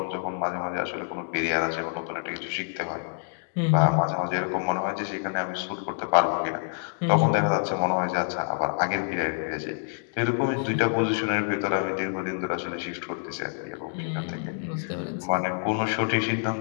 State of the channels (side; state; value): right; silent; digital silence